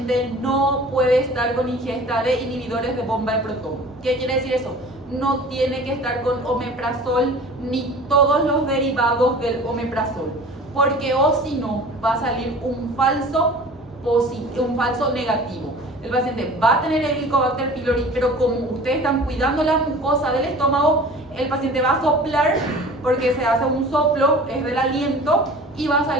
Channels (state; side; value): normal; both; correlation 0.42